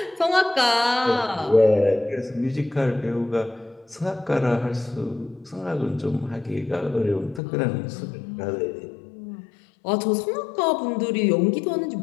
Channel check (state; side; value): drops out; right; at 7.4 s